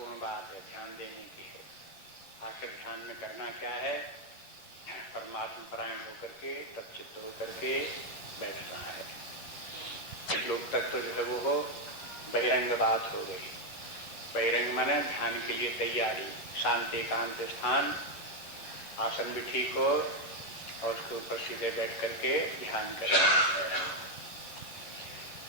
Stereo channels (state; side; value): late; right; 11 ms